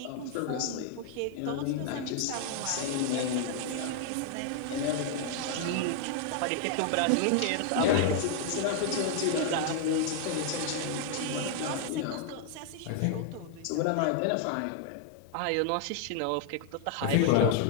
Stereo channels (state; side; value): different; both; correlation 0.00